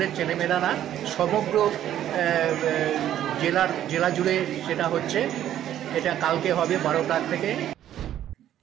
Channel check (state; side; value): quieter; left; 11.5 dB